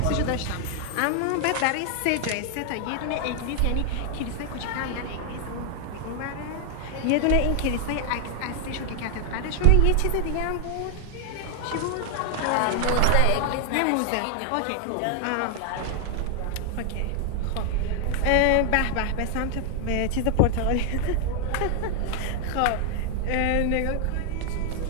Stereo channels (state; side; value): different; both; correlation 0.00